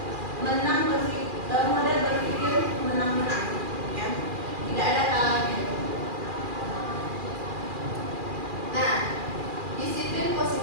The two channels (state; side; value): late; left; 2.4 ms